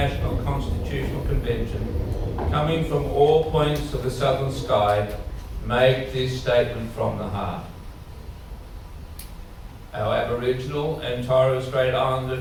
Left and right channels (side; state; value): both; identical; correlation 1.00